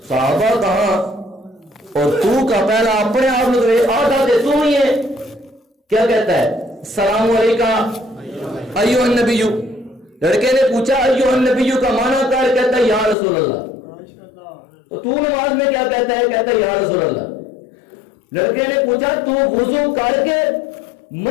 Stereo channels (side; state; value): right; drops out; at 13.2 s